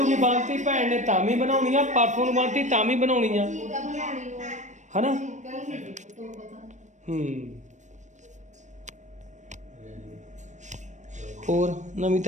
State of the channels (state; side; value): late; left; 0.35 ms